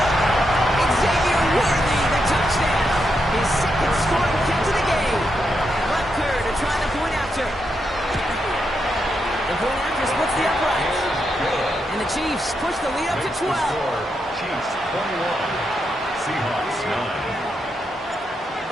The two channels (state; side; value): normal; both; correlation 0.83